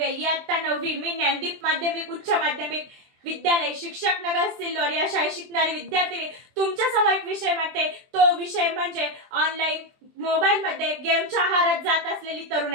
इयत्ता 9वी, मी ज्ञानदीप माध्यमिक उच्च माध्यमिक विद्यालय शिक्षक नगर सिल्लोड या शाळेत शिकणारी विद्यार्थिनी तुमच्या समोर एक विषय मांडते। तो विषय म्हणजे ऑनलाईन मोबाईल मध्ये गेमच्या आहारात जात असलेली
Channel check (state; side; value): late; left; 23 ms